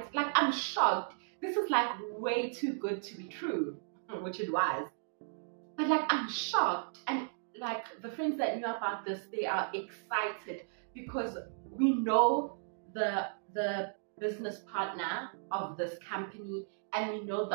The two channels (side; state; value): left; silent; digital silence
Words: Like I'm shocked. This is like way too good to be true, which it was. But like I'm shocked, and like the friends that knew about this, they are excited because we know the business partner of this company and we know